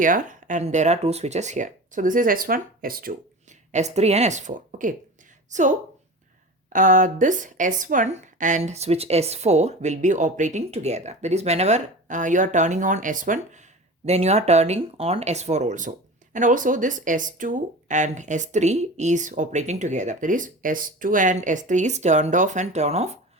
and there are two switches here. So this is S1, S2, S3 and S4. Okay, so this S1 and switch S4 will be operating together. That is, whenever you are turning on S1, then you are turning on S4 also. And also this S2 and S3 is operating together. That is, S2 and S3 is turned off and turn off,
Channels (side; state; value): both; normal; correlation 0.33